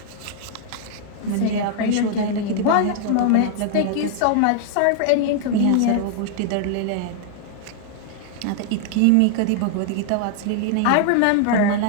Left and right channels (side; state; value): both; different; correlation 0.00